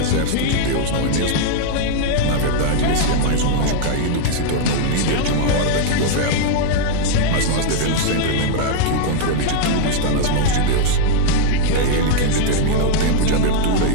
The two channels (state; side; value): different; both; correlation 0.00